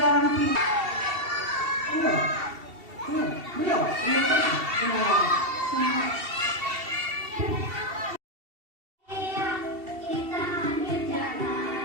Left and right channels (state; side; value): late; left; 2.7 ms